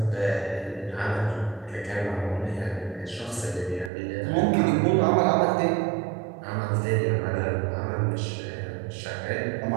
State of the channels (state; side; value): drops out; left; at 3.9 s